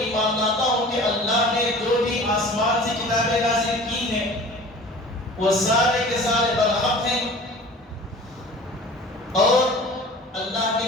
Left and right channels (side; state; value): both; normal; correlation 0.42